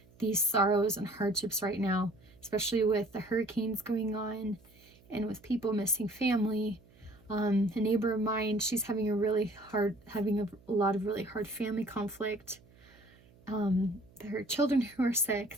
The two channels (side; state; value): right; noise; hum, 27 dB below the sound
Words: these sorrows and hardships right now, especially with the hurricanes going on and with people missing family. A neighbor of mine, she's having a lot of really hard family conflict. There are children who are